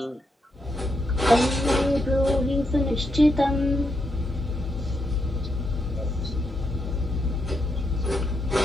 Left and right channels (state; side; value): normal; both; correlation 0.81